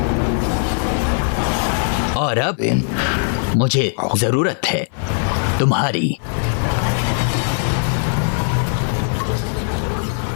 और अब मुझे जरूरत है तुम्हारी।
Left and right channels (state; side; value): silent; right; 59 dB below the other